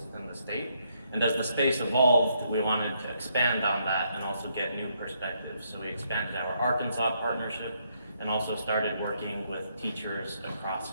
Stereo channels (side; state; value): both; inverted; correlation -0.74